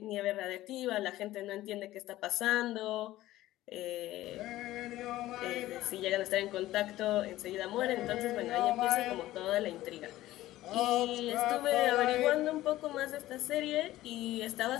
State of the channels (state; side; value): quieter; right; 15.7 dB